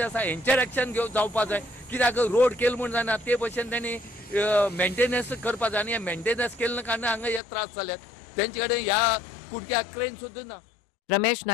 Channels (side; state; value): right; drops out; at 7.4 s